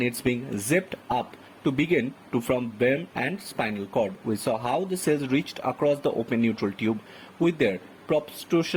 it's being zipped up to begin to from brain and spinal cord. We saw how the cells reached across the open neutral tube with their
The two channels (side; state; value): both; identical; correlation 1.00